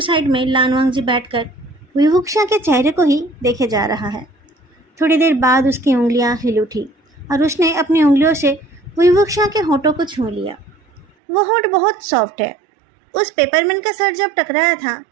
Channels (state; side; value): drops out; left; at 11.1 s